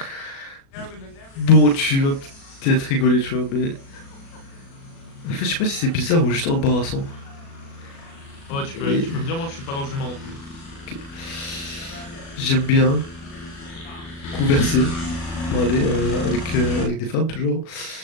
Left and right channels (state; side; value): late; right; 36 ms